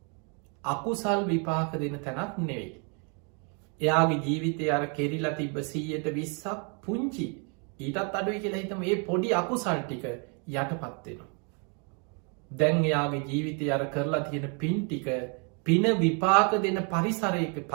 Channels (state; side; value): quieter; left; 37.2 dB